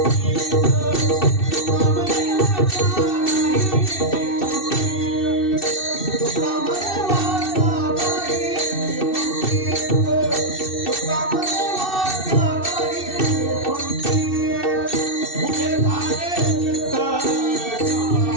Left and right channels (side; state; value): right; late; 2.6 ms